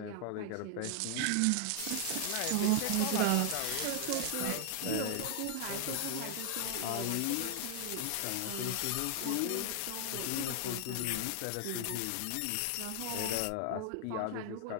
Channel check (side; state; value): both; different; correlation 0.00